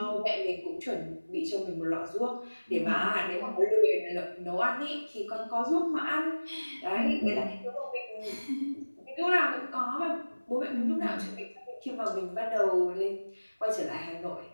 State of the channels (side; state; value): both; inverted; correlation -1.00